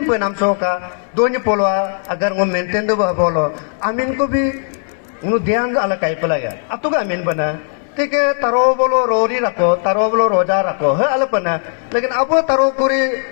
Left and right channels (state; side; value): silent; right; 62 dB below the other